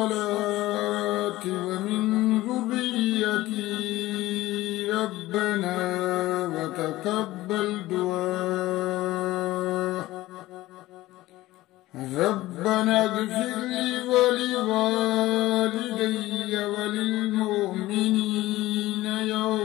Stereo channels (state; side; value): quieter; right; 17.2 dB